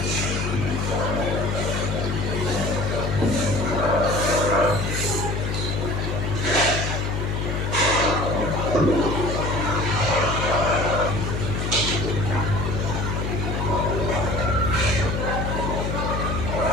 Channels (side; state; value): left; noise; hum, 2 dB below the sound